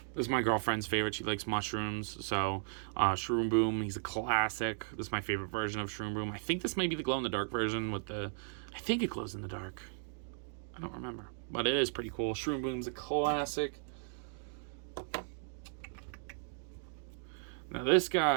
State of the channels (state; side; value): silent; left; digital silence